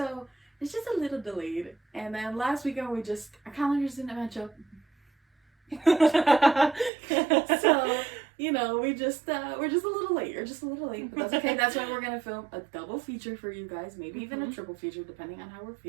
it's just a little delayed. And then last weekend our calendars didn't match up. So, we're just a little late. You're just a little late, but that's okay. That's why we're gonna film a double feature for you guys, maybe even a triple feature, depending on how we're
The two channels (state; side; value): drops out; left; at 6.9 s